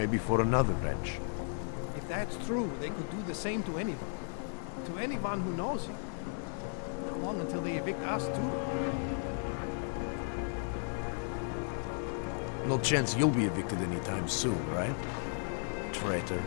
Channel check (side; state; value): right; silent; 55 dB below the other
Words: for another wrench. If that's true, they could do the same to anyone. To anyone who knows him. How long until they evict us too? No chance you'll be evicted anytime soon, right? Traitor.